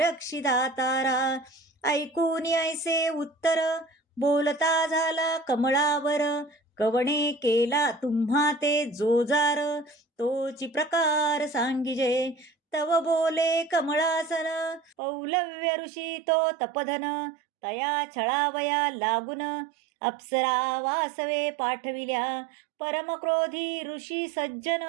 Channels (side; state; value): left; drops out; at 15.0 s